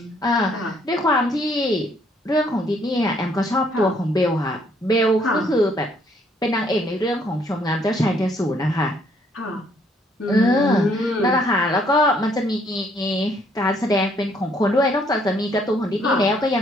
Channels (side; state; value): both; normal; correlation 0.67